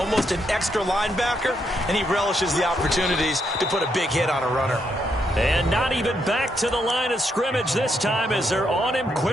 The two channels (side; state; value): both; normal; correlation 0.78